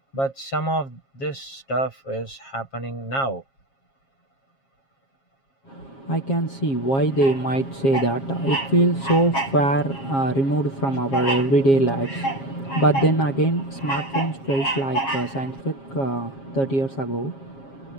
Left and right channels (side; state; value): right; late; 7.4 ms